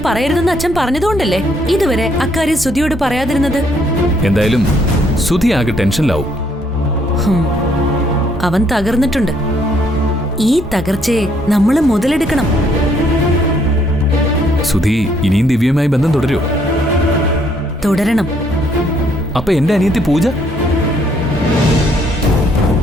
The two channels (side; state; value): both; normal; correlation 0.68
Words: പറയരുതെന്ന് അച്ഛൻ പറഞ്ഞതുകൊണ്ടല്ലേ ഇതുവരെ അക്കാര്യം സുധിയോട് പറയാതിരുന്നത്. എന്തായാലും സുധി ആകെ ടെൻഷനിലാവും. അവൻ തകർന്നിട്ടുണ്ട്. ഈ തകർച്ചയെ നമ്മൾ മുതലെടുക്കണം. സുധി ഇനിയും ദിവ്യയുമായി ബന്ധം തുടരുമോ? തുടരണം. അപ്പൊ എന്റെ അനിയത്തി പൂജ?